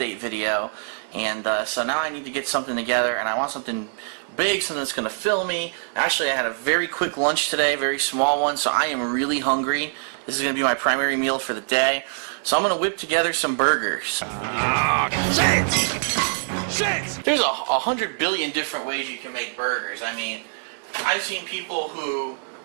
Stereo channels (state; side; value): silent; left; digital silence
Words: video, and so now I need to get something together, and I want something big, something that's going to fill me. Actually, I had a very quick lunch today, very small one, so I am really hungry. This is going to be my primary meal for the day. So I'm going to whip together some burgers. Shit! There's 100 billion different ways you can make burgers. I mean, I've seen people who